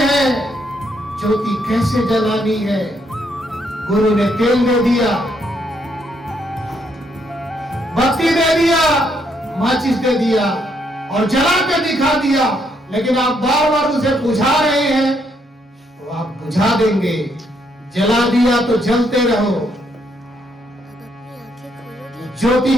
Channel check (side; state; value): both; normal; correlation 0.74